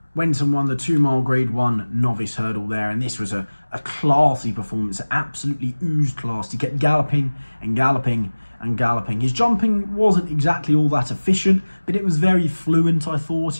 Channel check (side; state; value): both; inverted; correlation -1.00